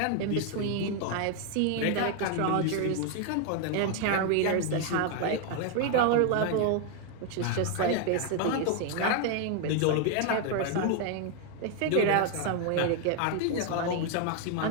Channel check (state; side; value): different; both; correlation 0.01